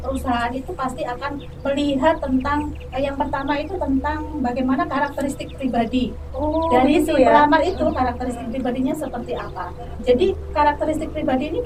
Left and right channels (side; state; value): both; identical; correlation 1.00